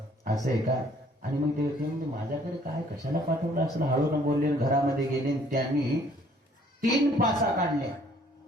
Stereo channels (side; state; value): both; normal; correlation 0.60